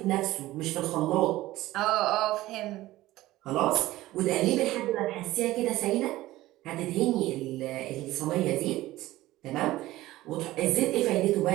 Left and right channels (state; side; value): quieter; left; 16.7 dB